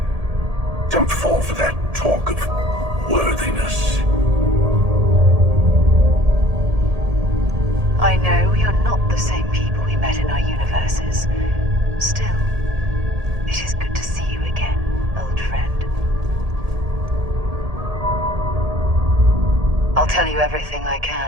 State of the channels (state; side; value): late; left; 1.8 ms